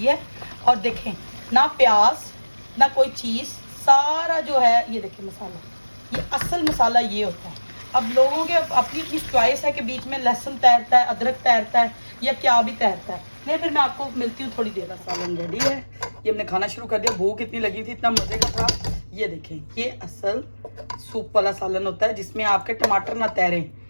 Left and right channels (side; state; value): both; inverted; correlation -1.00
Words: है। और देखें ना प्याज ना कोई चीज़, सारा जो है ये देखिए मसाला, ये असल मसाला ये होता है। अब लोगों के अपनी अपनी चॉइस है कि बीच में लहसुन तैरता है, अदरक तैरता है, या क्या भी तैरता है। नहीं, फिर मैं आपको मिलती हूँ थोड़ी देर। सालन रेडी है, ये हमने खाना शुरू कर दिया। भूख इतनी लगी थी, इतना मज़े का था। ये देखें, ये असल सूप वाला सालन होता है जिसमें आपके टमाटर ना तैरें,